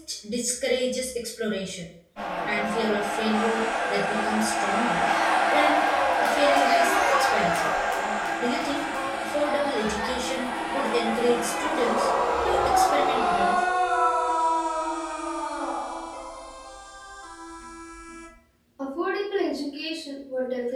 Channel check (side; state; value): both; identical; correlation 1.00